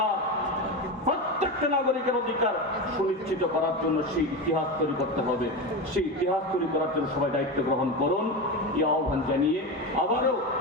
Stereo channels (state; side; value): normal; both; correlation 0.19